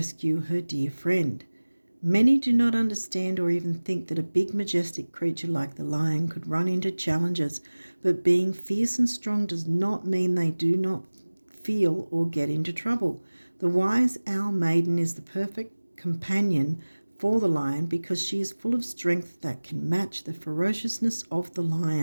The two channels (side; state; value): both; inverted; correlation -1.00